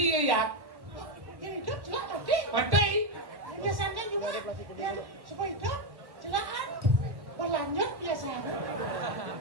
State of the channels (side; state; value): left; late; 1.1 ms